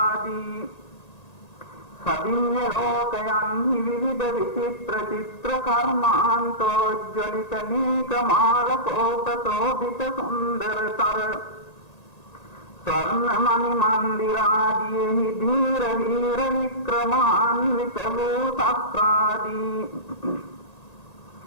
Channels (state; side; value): late; right; 1.8 ms